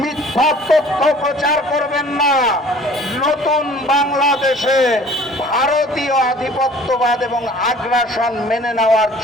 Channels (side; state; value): both; normal; correlation 0.50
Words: মিথ্যা তথ্য প্রচার করবেন না। নতুন বাংলাদেশে ভারতীয় আধিপত্যবাদ এবং আগ্রাসন মেনে নেওয়ার